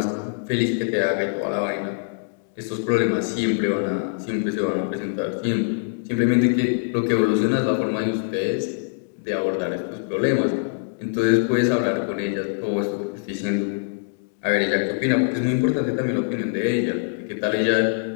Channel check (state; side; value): silent; right; digital silence